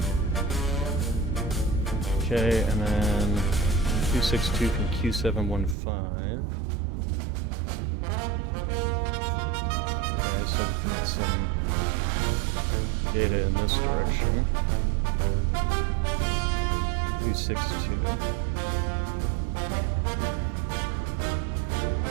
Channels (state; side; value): drops out; left; at 5.8 s